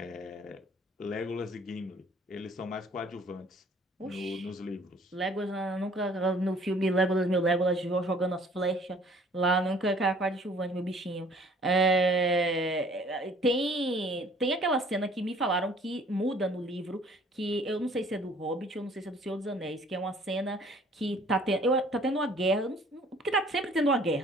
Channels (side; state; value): both; normal; correlation 0.55